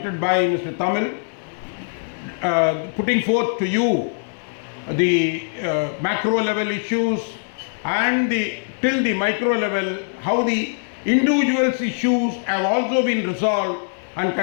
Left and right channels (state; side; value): silent; right; digital silence